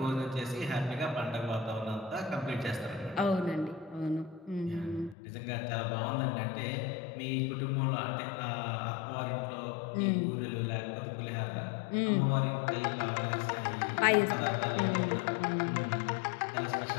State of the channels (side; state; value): right; drops out; at 5.2 s